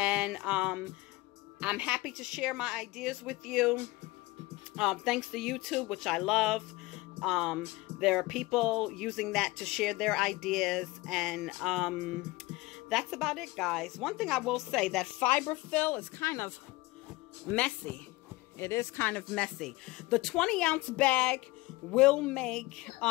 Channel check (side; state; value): right; quieter; 20.9 dB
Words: I'm happy to share my ideas with you. Thanks to YouTube, which I love. There are people using that to share their ideas, and that's about it, guys. One thing I will say, that fiber fill is kind of messy. It is kind of messy. The 20-ounce bag will make